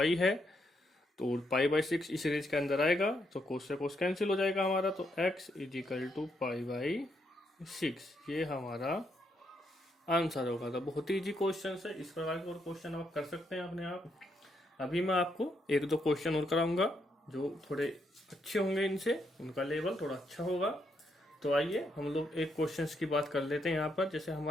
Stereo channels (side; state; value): both; normal; correlation 0.78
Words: है। तो π/6 इस रेंज के अंदर आएगा तो cos से cos कैंसिल हो जाएगा हमारा। तो x इज इक्वल टू π/6 ये हमारा आंसर होगा। तो बहुत ही इजी क्वेश्चन है, इस प्रकार के और क्वेश्चन आप कर सकते हैं अपने आप। अभी मैं आपको एक दो क्वेश्चन और कराऊंगा जो थोड़े अच्छे होंगे, इनसे उनका लेवल थोड़ा अच्छा होगा। तो आइए हम लोग एक क्वेश्चंस की बात कर लेते हैं यहाँ पर। जैसे